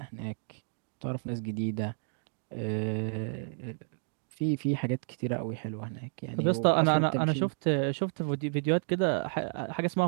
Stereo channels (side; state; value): left; silent; digital silence